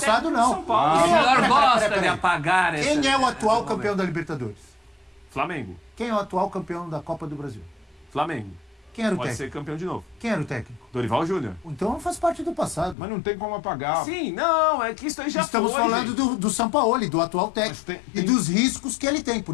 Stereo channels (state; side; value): drops out; right; at 13.0 s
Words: técnico não. do São Paulo. o senhor peraí, gosta peraí. de apagar esse... Quem é o atual esse campeão momento. da Libertadores? Flamengo. Quem é o atual campeão da Copa do Brasil? Flamengo. Quem era o Pode técnico? ser campeão de novo. Quem era o técnico? Dorival Júnior. Então faz parte do passado. Mas não tem como apagar. Sim, não, é que isso aí já Estamos foi, falando gente. do Sampaoli, do atual técnico. Mas E dos riscos que ele tem.